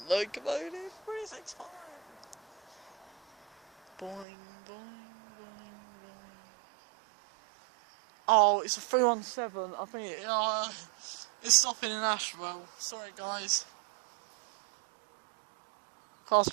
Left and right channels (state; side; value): drops out; left; at 4.2 s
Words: locomotive 365. Boing, boing, boing, boing. Oh, it's a 317. I think it's stopping in Ashwell. Sorry, guys. Class